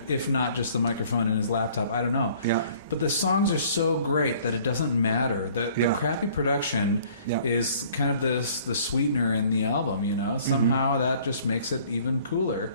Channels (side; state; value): both; inverted; correlation -0.55